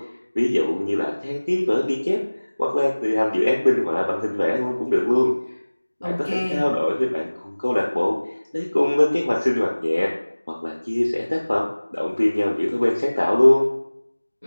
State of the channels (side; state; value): both; inverted; correlation -1.00